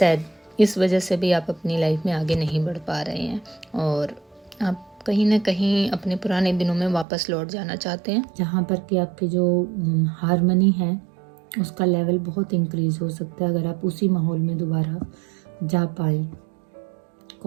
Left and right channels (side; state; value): left; drops out; at 7.1 s